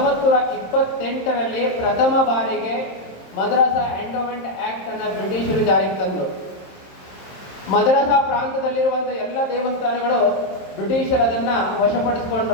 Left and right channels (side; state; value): right; late; 26 ms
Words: ಪ್ರಥಮ ಬಾರಿಗೆ madrasa endowment act ಅನ್ನು ಬ್ರಿಟಿಷರು ಜಾರಿಗೆ ತಂದರು. ಮದ್ರಸಾ ಪ್ರಾಂತದಲ್ಲಿರುವಂಥ ಎಲ್ಲ ದೇವಸ್ಥಾನಗಳು ಬ್ರಿಟಿಷರು ಅದನ್ನು